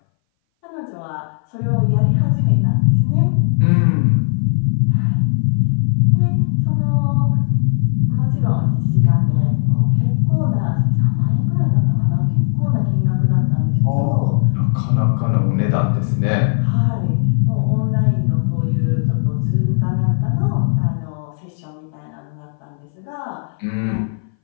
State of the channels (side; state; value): right; silent; 61 dB below the other